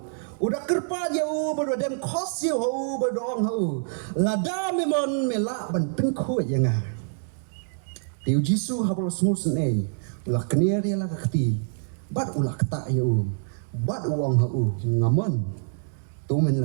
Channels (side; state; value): left; silent; digital silence